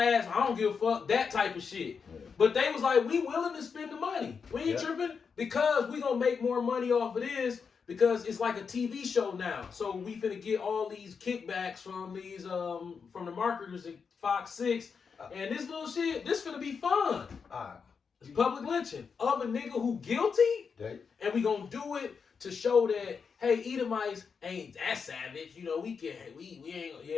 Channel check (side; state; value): right; quieter; 5.9 dB